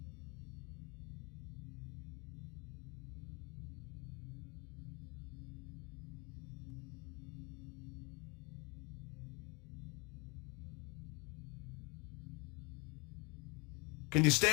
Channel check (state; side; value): quieter; right; 28.5 dB